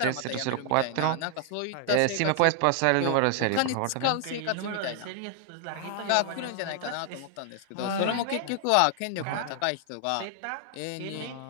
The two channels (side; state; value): both; different; correlation 0.00